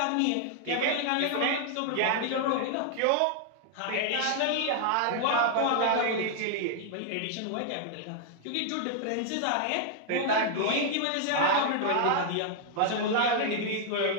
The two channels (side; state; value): both; different; correlation 0.00